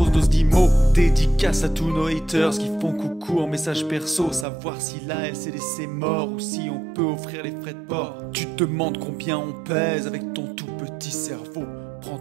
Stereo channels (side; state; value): left; drops out; at 4.5 s